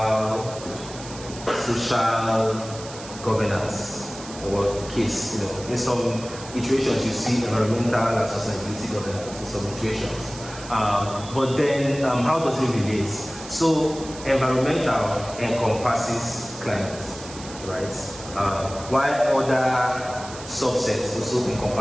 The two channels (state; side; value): noise; right; hiss, 14 dB below the sound